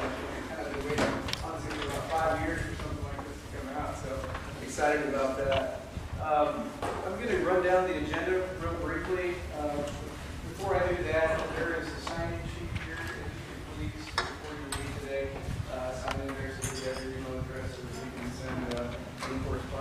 kind of been waiting honestly for about 5 years for something like this to come out, so excited about that. I'm going to run down the agenda real briefly. Before I do that, there is a sign-in sheet here. If you could please, before you leave today, sign in there so we have your email address so that we can send any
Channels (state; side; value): identical; both; correlation 1.00